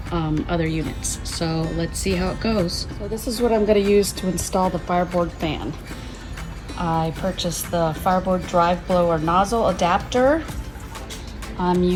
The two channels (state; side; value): identical; both; correlation 1.00